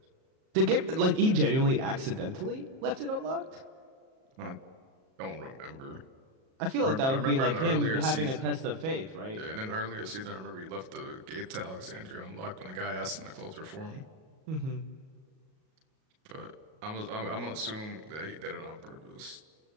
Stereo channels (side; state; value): left; late; 38 ms